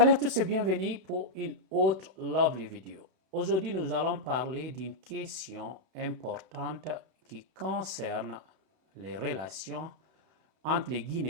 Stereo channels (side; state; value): left; late; 32 ms